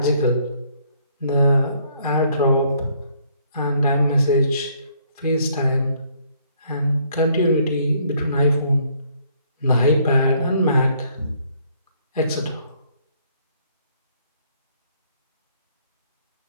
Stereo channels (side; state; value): both; inverted; correlation -0.65